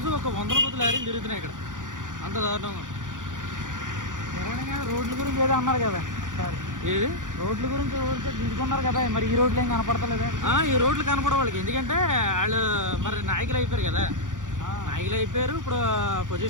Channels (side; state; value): left; late; 0.87 ms